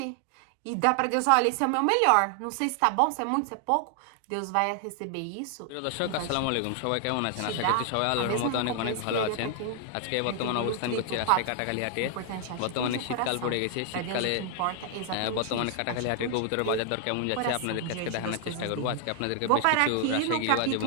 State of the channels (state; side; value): different; both; correlation 0.00